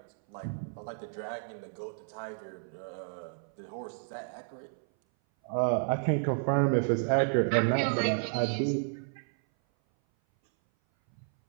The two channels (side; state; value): left; silent; 57 dB below the other